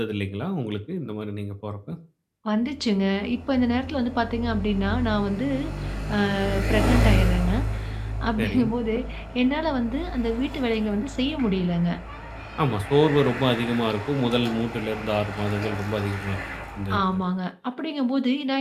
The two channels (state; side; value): identical; both; correlation 1.00